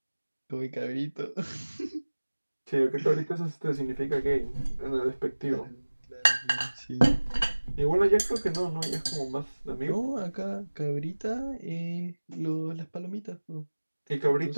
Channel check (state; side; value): inverted; both; correlation -1.00